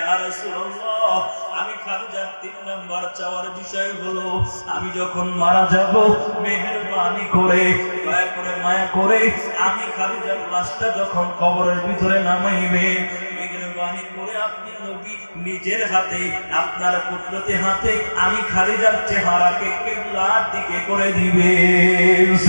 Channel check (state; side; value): inverted; both; correlation -1.00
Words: রাসূলুল্লাহ, আমি খাদিজার তিন নাম্বার চাওয়ার বিষয় হলো, আমি যখন মারা যাব মেহেরবানি করে, দয়া করে, মায়া করে আমি খাদিজার লাশটা যখন কবরের ভিতরে নামাইবেন, মেহেরবানি করে আপনি নবী নিজের হাতে, আপনার কুদরতি হাতে আমি খাদিজার চেহারাকে কিবলার দিকে করে দিবেন।